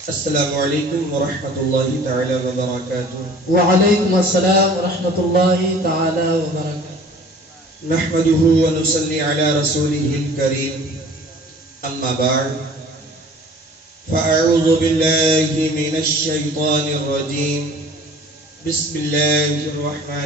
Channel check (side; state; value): both; normal; correlation 0.48